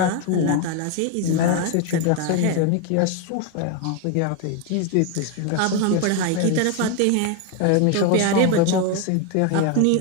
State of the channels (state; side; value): different; both; correlation 0.01